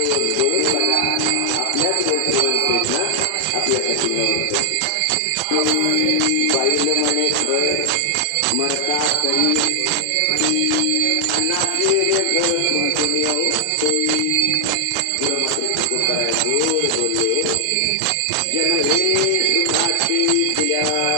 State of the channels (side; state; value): both; different; correlation 0.00